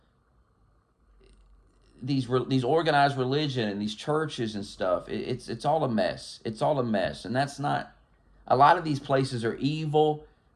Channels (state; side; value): identical; both; correlation 1.00